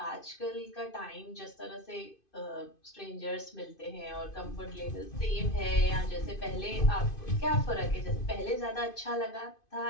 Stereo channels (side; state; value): right; late; 2.5 ms